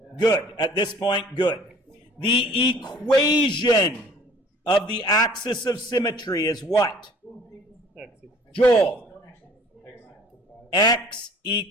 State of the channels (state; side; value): normal; both; correlation 0.52